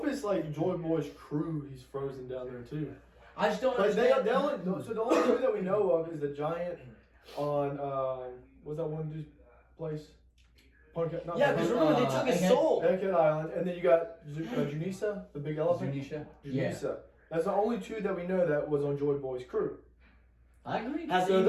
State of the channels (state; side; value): identical; both; correlation 1.00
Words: like Joy Boy's crew? He's frozen down there too. I just don't Like understand. so the only two that we know of is the giant on what's that one dude's place? Yeah, because remember they took his soul. Egghead Island, and then you got Junisa, the big elephant. Junisa? Yeah. That's the only two that we know that was on Joy Boy's crew. I agree. So